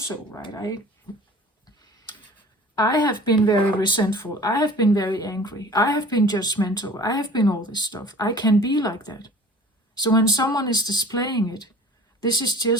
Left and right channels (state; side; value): normal; both; correlation 0.44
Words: right? I have been very resentful. I have been very angry. I have been judgmental. I have been all this stuff. I can be like that. So when someone is displaying it, this is